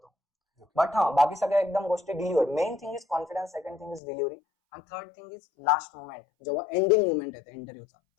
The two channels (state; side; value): drops out; right; at 4.0 s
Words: बट हा बाकी सगळ्या एकदम गोष्टी delivery. Main thing is confidence, second thing is delivery, आणि third thing is last moment, जेव्हा एंडिंग मोमेंट येते इंटरव्ह्यूचा,